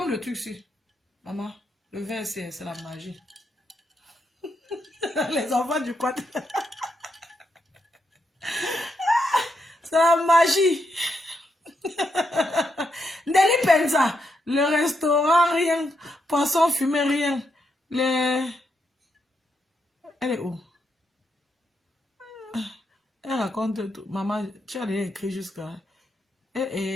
le truc ici. Maman, le verre c'est la magie. Les enfants du quad. C'est la magie. Nelly Penza, le restaurant, rien. Poisson fumé, rien. Les... Elle est où? Elle raconte tout. Maman, tu as déjà écrit jusqu'à...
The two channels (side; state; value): both; normal; correlation 0.81